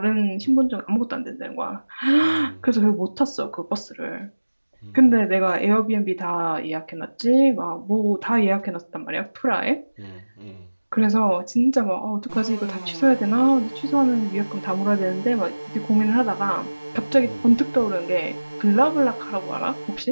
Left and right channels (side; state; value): both; inverted; correlation -1.00